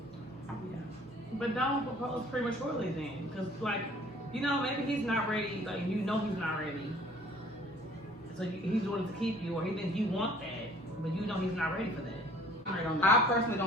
But don't propose prematurely then. Because, like, you know, maybe he's not ready. Like, you know he's not ready. So he's doing it to keep you, or he thinks you want that, but you know he's not ready for that. I personally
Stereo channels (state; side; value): normal; both; correlation 0.54